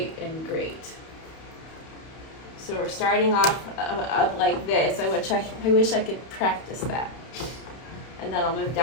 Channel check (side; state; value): right; late; 31 ms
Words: and great. So we're starting off up like this. I wish I could practice that. And then I'll move